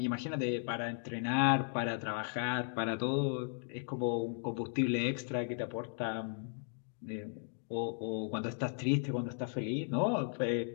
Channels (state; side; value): silent; right; 54 dB below the other